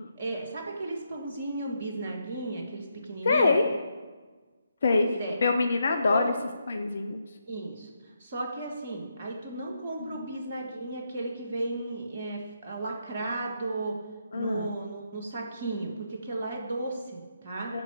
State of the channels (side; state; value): both; inverted; correlation -0.80